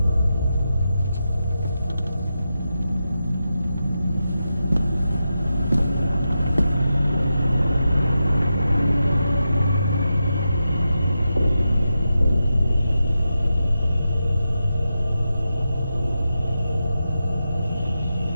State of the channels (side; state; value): both; inverted; correlation -0.88